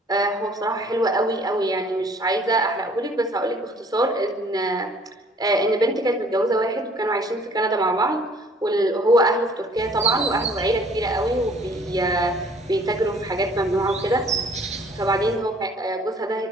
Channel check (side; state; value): both; normal; correlation 0.56